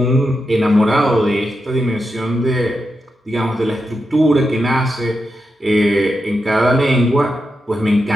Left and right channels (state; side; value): normal; both; correlation 0.87